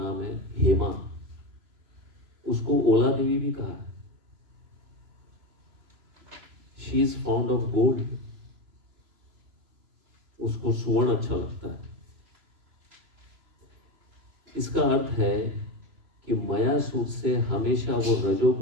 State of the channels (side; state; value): left; late; 3.0 ms